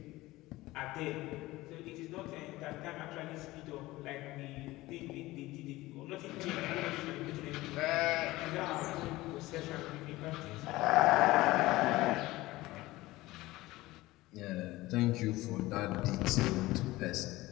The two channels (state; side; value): quieter; right; 18.6 dB